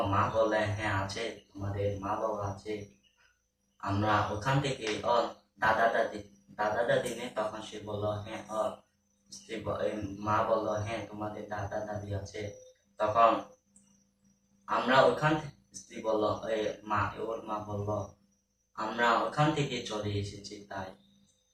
মা বললেন, হ্যাঁ আছে, তোমাদের মা বাবা আছে, আমরা ওখান থেকে দাদা দাদি দাদা দাদি নেই? তখন সে বলল, হ্যাঁ মা বলল, হ্যাঁ তোমাদের দাদা দাদি আছে। তখন আমরা ওখান স্ত্রী বলল, ওর মা বলল, আমরা ওখান থেকে চলে এসেছি। তাই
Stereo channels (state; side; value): identical; both; correlation 1.00